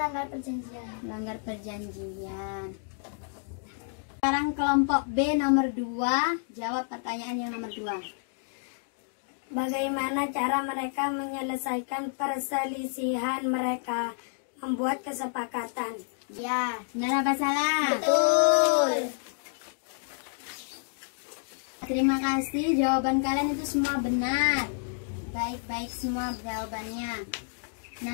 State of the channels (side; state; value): right; silent; digital silence